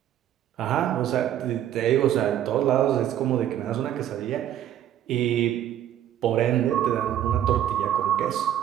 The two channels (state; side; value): quieter; left; 11.2 dB